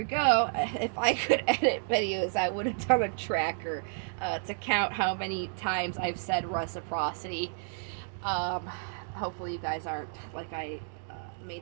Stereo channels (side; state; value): left; silent; digital silence